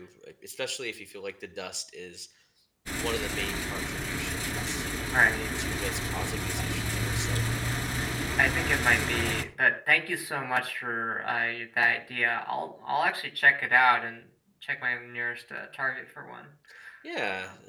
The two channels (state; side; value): identical; both; correlation 1.00